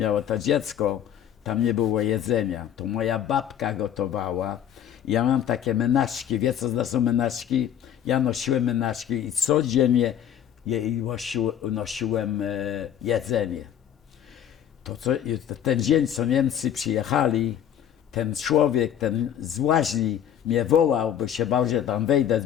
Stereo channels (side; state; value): right; quieter; 9.8 dB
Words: to dziecko, tam nie było jedzenia, to moja babka gotowała. Ja mam takie menaczki, wie co to są menaczki? Ja nosiłem menaczki i codziennie jej nosiłem jedzenie. Ten dzień, co Niemcy przyjechali, ten człowiek, ten z łaźni mnie wołał, bo się bał, że tam wejdę,